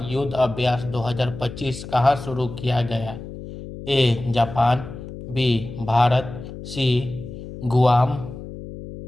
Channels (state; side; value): noise; left; hum, 12 dB below the sound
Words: युद्ध अभ्यास 2025 कहाँ शुरू किया गया? A Japan, B Bharat, C Guam,